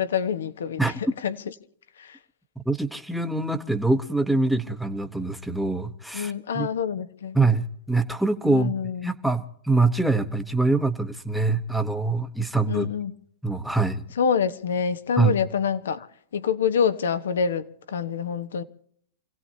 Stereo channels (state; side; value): normal; both; correlation 0.34